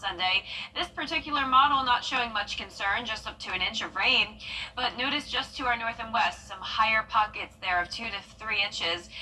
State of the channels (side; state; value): both; identical; correlation 1.00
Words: This particular model not showing much concern, just up to an inch of rain. But notice just to our north and west, some higher pockets there of 2 to 3 inches.